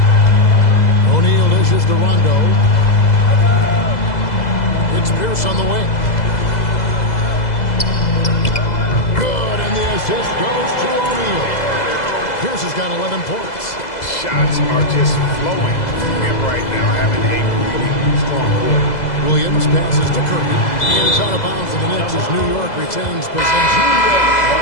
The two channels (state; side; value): late; right; 2.0 ms